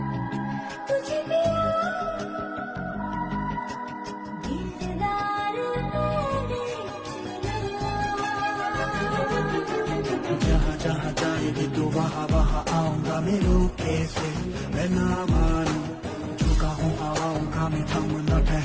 तुझे पिया दिलदार मैंने चुना जहाँ जहाँ जाएगी तू वहाँ वहाँ आऊंगा मेरे कैसे मैं ना मानूं झुका हूँ हवाओं का मैं थम न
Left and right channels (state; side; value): identical; both; correlation 1.00